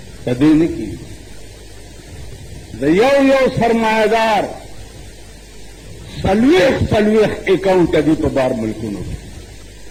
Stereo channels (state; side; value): identical; both; correlation 1.00